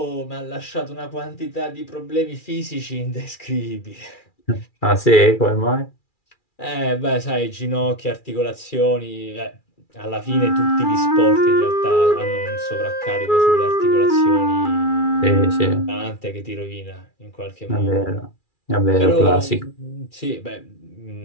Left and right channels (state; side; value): late; right; 2.4 ms